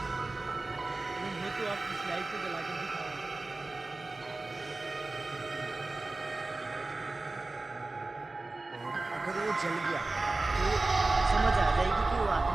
तो आप इस लाइट को जला कर दिखाओ। अगर वो जल गया तो समझ आ जाएगी कि वो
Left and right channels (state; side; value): quieter; left; 3.2 dB